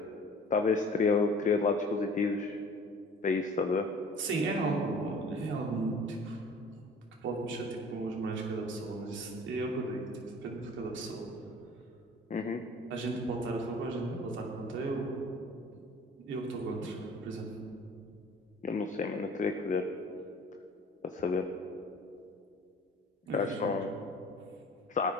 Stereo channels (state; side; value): normal; both; correlation 0.47